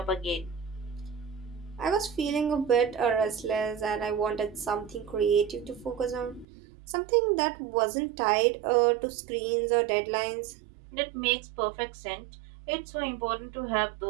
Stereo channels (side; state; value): left; drops out; at 6.5 s